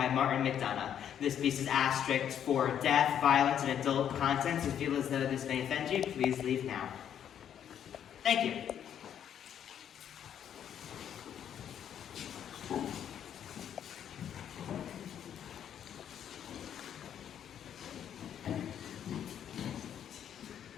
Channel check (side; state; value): right; quieter; 9.4 dB